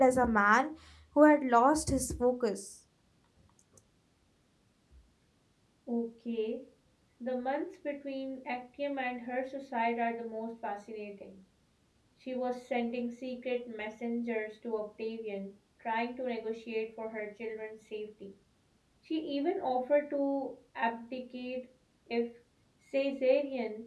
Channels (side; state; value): both; identical; correlation 1.00